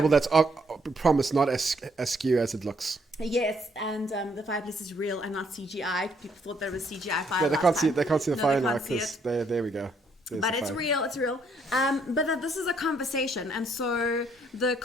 that's promised not as askew as it looks. Yes, and the fireplace is real and not CGI. People thought there was CGI fire. Yeah, they can't see the fire now can't see because there we go. There's but the it's fire. real, it's real. But this is a conversation, and so the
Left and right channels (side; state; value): both; normal; correlation 0.70